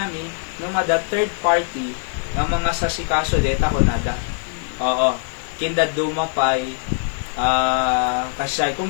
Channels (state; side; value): silent; right; 57 dB below the other